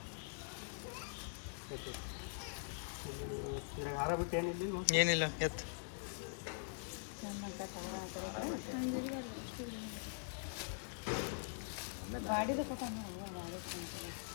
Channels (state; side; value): silent; right; digital silence